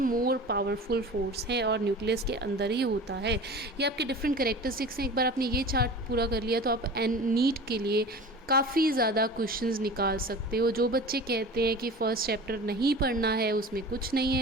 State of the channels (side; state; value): both; normal; correlation 0.37